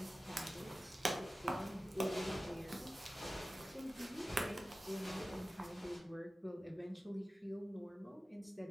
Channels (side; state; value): both; normal; correlation 0.95